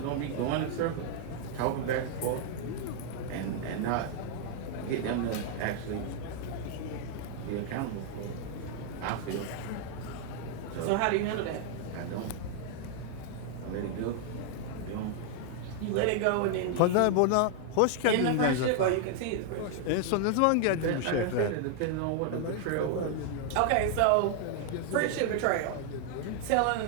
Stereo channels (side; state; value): both; different; correlation 0.00